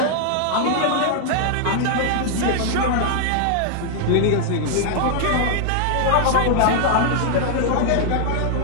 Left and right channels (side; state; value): both; different; correlation 0.00